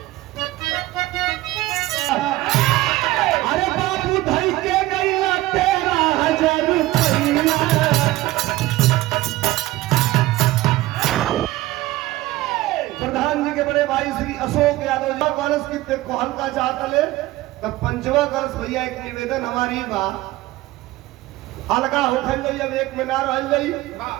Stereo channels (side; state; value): left; quieter; 17.6 dB